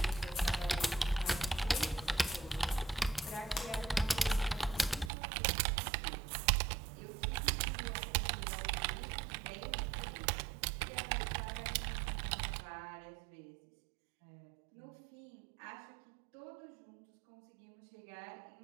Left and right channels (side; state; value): left; drops out; at 5.1 s